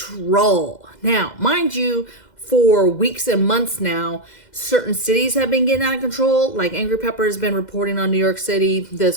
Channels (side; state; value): right; late; 2.1 ms